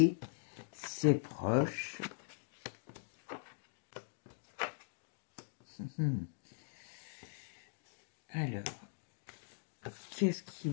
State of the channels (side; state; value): right; silent; digital silence